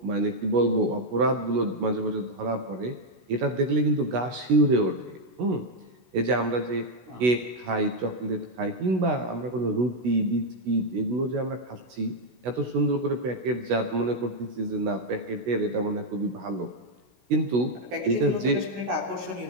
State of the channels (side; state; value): left; late; 16 ms